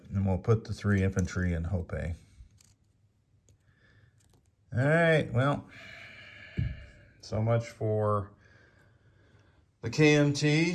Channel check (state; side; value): identical; both; correlation 1.00